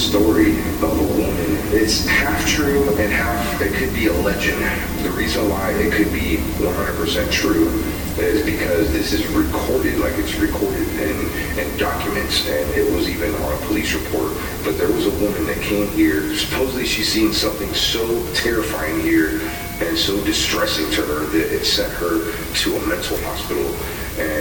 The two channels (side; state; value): both; identical; correlation 1.00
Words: of a woman. It's half true and half, it could be a legend. The reason why it could be 100% true is because this is recorded, like it's recorded in documents, and it was even on a police report. But there was a woman that came here. Supposedly she's seen something so terrifying here and so distressing to her that it sent her to a mental hospital,